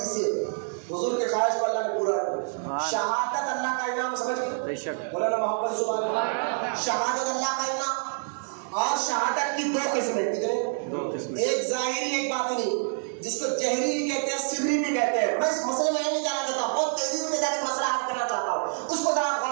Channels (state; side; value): silent; left; 58 dB below the other